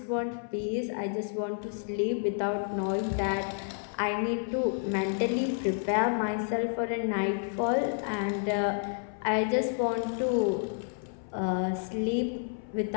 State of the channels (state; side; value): silent; right; 58 dB below the other